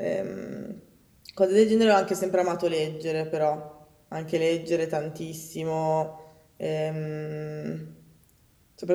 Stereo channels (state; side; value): identical; both; correlation 1.00